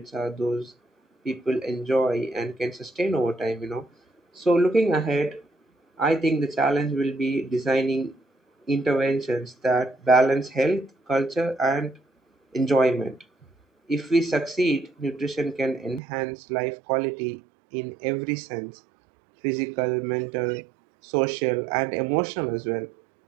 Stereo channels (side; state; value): left; drops out; at 16.0 s